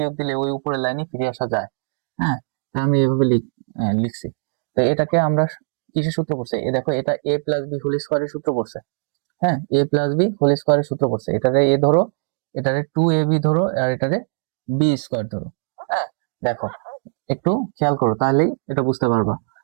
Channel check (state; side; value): silent; left; digital silence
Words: দিলে ওই উপরের লাইনে ফিরে আসা যায়। হ্যাঁ, তা আমি এভাবে লিখছি। তো এটাকে আমরা কিসের সূত্র পড়ছে? এ দেখো, এটা a প্লাস বি হোল স্কোয়ারের সূত্র পড়ছে। হ্যাঁ, a প্লাস বি হোল স্কোয়ারের সূত্র পড়ছে। এটারে a ধরো, এটারে 2ab ধরো, আর এটারে বি স্কোয়ার ধরো। হ্যাঁ, দেখো একটু খেয়াল করো, তাহলেই এটা বুঝতে পারবা।